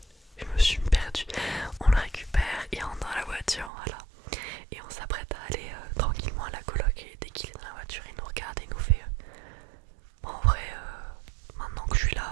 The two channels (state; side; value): drops out; left; at 3.7 s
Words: je me suis perdue. On le récupère, il rentre dans la voiture, voilà. Et on s'apprête à aller tranquillement à la coloc et dès qu'il est dans la voiture, il nous regarde et il nous fait bon, en vrai, maintenant que je suis